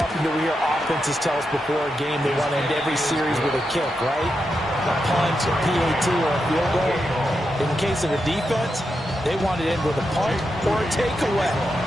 do we hear offenses tell us before a game they want to end every series with a kick, right? A punt, a PAT, or a field goal. In the case of the defense, they want to end with a punt or a takeaway.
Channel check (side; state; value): both; normal; correlation 0.86